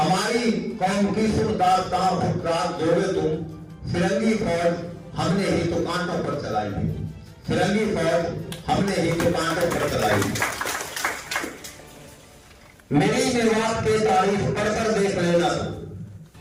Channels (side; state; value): both; identical; correlation 1.00